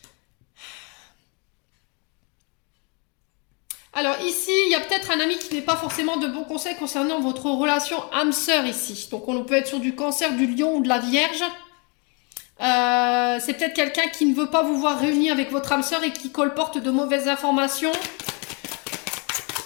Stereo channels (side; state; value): right; quieter; 33.7 dB